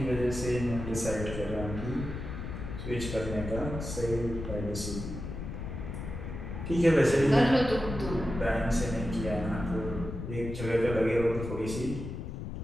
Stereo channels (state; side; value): noise; left; rumble, 7 dB below the sound